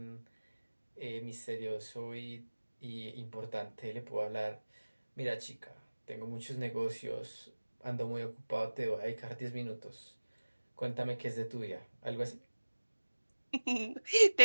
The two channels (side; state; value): both; inverted; correlation -1.00